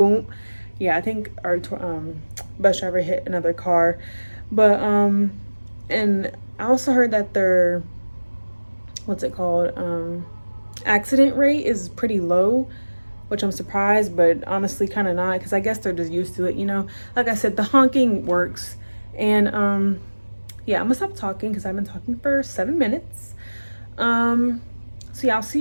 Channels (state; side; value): inverted; both; correlation -1.00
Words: Yeah, I think our bus driver hit another car. But and I also heard that their what's it called, accident rate is pretty low, which I'm surprised, but honestly kind of not, because I guess they're just used to it, you know. Like I said, the honking works. And yeah, I'm gonna stop talking because I've been talking for 7 minutes. So yeah, I'll see